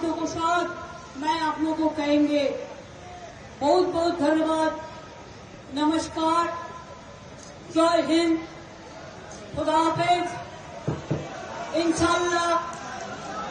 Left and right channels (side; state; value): both; identical; correlation 1.00